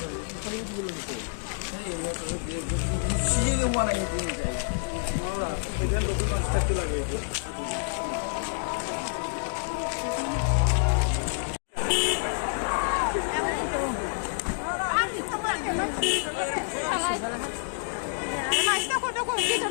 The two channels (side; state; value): right; silent; digital silence